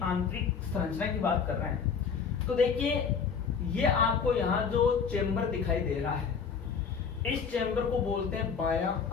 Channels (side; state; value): right; quieter; 6.1 dB